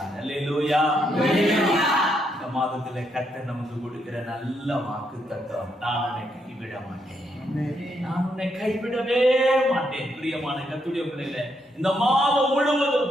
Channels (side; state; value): both; normal; correlation 0.77